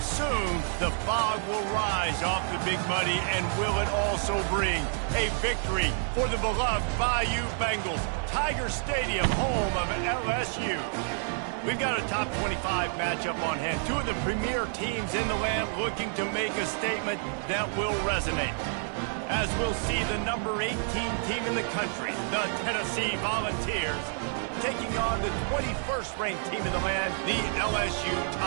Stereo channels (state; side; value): silent; left; 58 dB below the other